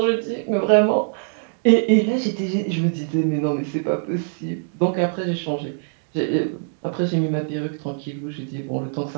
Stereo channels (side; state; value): left; silent; digital silence